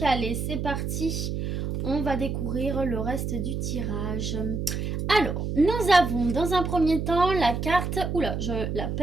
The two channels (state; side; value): noise; right; hum, 3 dB below the sound